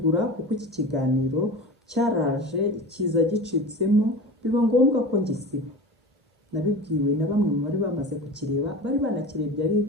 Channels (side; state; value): both; normal; correlation 0.32